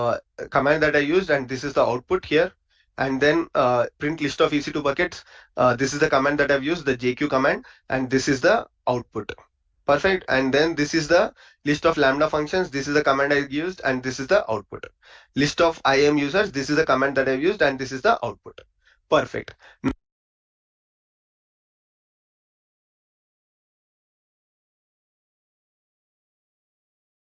command that I used, and this is the output here. And then print list of EC2 buckets. This is the command that I've used, the JQ command, and this is the output. Perfect. And then this is the list of Lambda functions. This is the command I used, and this is the output. List of IAM users. This is the command that I've used, and this is the output. Perfect.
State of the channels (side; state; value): both; identical; correlation 1.00